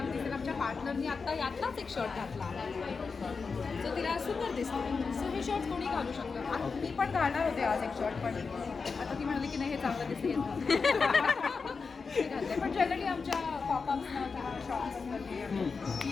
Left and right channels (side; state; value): right; quieter; 4.9 dB